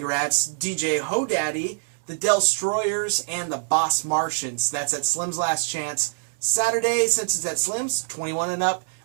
DJ Hodaddy, the Destroyers, and the Boss Martians. That's at Slim's Last Chance. Saturday, since it's at Slim's, 21 and up,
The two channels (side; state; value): left; silent; digital silence